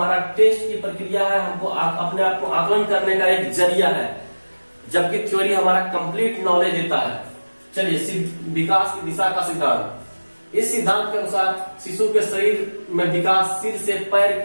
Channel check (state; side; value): inverted; both; correlation -1.00